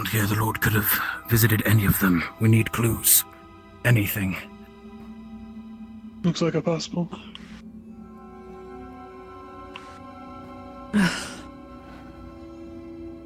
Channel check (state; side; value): identical; both; correlation 1.00